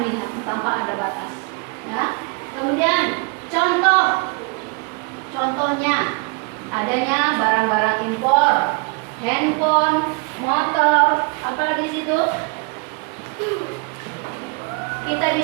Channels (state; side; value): quieter; left; 31.3 dB